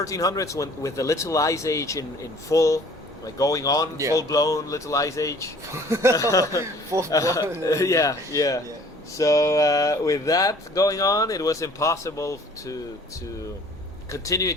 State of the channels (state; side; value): normal; both; correlation 0.52